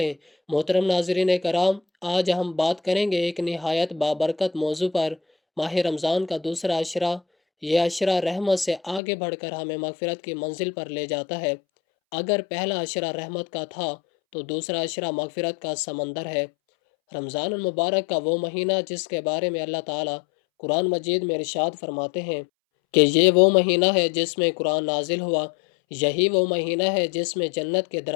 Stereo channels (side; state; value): right; drops out; at 9.0 s